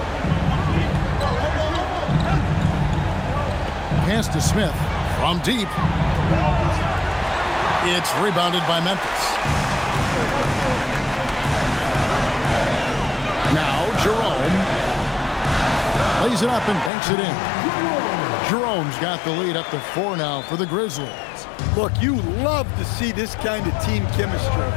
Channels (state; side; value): drops out; right; at 16.9 s